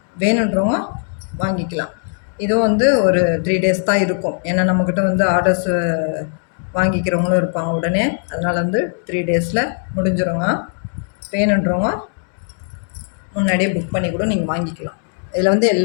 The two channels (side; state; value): right; silent; 62 dB below the other